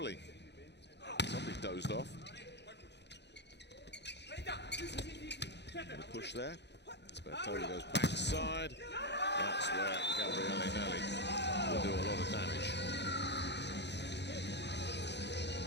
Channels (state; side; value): late; right; 0.50 ms